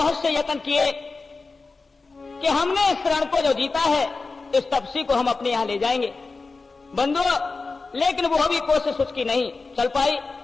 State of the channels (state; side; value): quieter; right; 4.0 dB